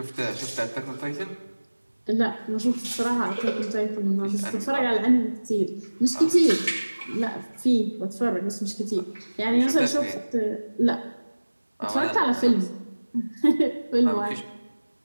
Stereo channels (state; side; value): inverted; both; correlation -1.00